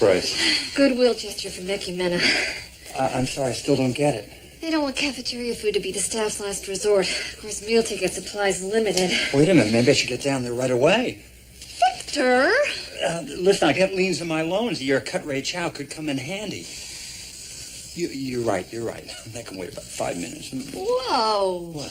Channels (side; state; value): both; identical; correlation 1.00